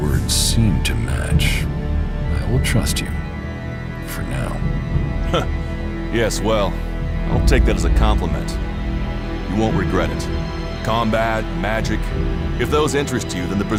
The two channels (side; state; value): both; identical; correlation 1.00